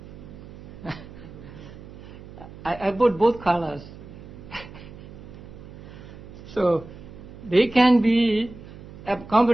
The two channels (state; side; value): noise; right; hum, 16 dB below the sound